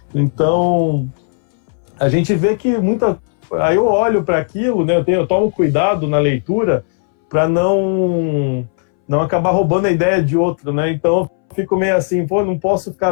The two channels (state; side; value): silent; right; 65 dB below the other